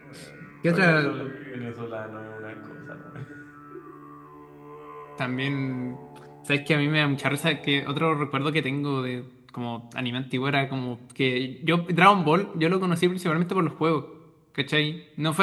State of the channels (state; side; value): identical; both; correlation 1.00